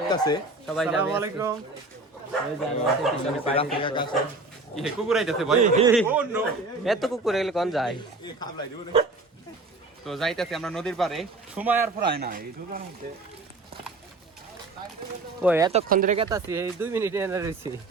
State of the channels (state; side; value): quieter; left; 3.2 dB